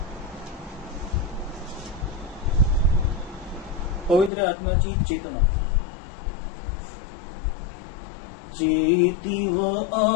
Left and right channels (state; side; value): drops out; right; at 4.3 s